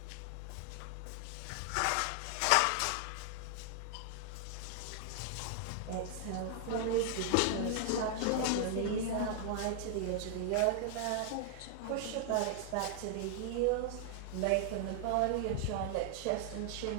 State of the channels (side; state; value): both; different; correlation 0.00